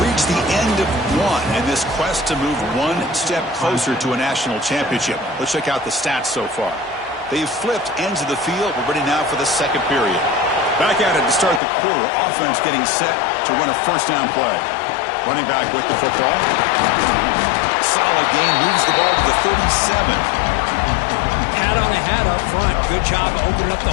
reached the end of one in this quest to move one step closer to a national championship. Let's check out the stats so far. They've flipped ends of the field. We're ready now for the second period. Back at it to start the quarter. Offense getting set to run a first down play. Running back with the football. Solid gain. Moves the ball to the 37. Hat on a hat up front. Good job of opening up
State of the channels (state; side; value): drops out; right; at 11.6 s